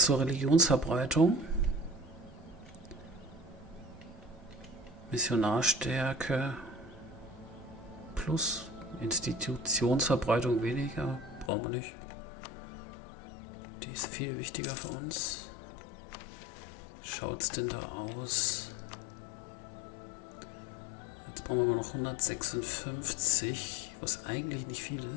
Religionsverbreitung. Missionarstärke plus Institutionsverbreitung weniger. Brauchen wir nicht. Die ist viel wichtiger für uns. Schaut's denn da aus? Jetzt brauchen wir mal noch 156, was eigentlich nicht viel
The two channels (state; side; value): drops out; right; at 11.5 s